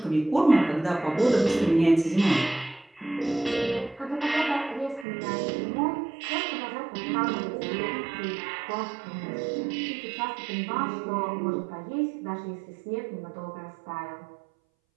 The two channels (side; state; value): left; drops out; at 5.1 s